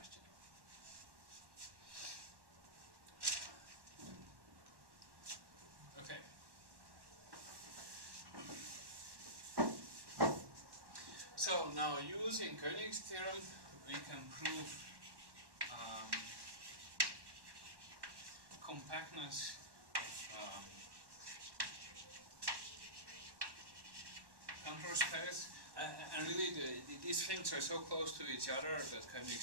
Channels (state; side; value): late; left; 1.1 ms